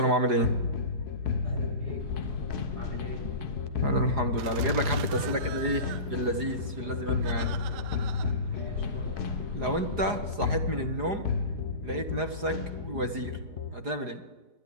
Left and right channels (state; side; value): late; left; 4.9 ms